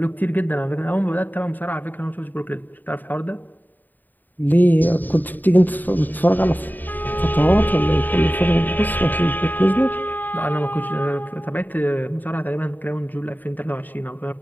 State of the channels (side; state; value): right; late; 0.088 ms